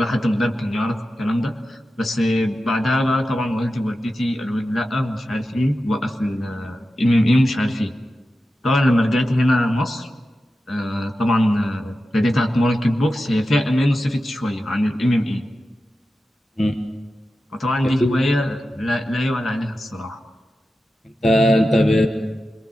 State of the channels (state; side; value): normal; both; correlation 0.92